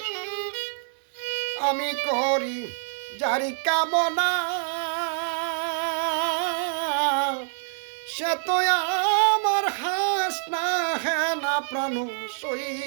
আমি করি যারি কামনা, সে তো আমার হাস না হে না প্রাণ সই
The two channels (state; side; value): silent; left; digital silence